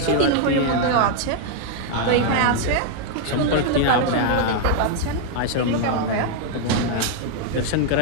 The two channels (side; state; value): both; different; correlation 0.00